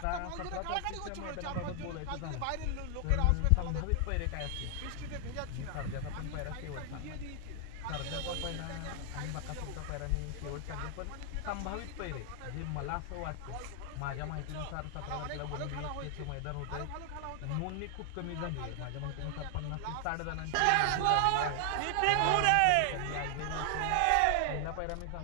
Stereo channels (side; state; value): both; different; correlation 0.00